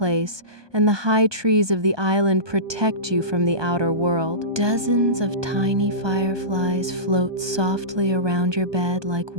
and the high trees of the island protect you from the outer world. Dozens of tiny fireflies float softly around your bed like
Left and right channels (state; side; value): late; left; 1.2 ms